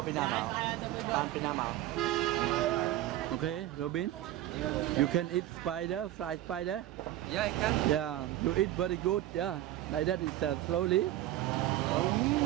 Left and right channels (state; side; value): quieter; left; 14.0 dB